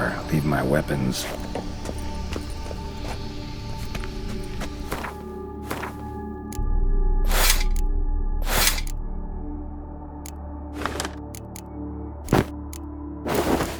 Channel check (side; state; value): both; identical; correlation 1.00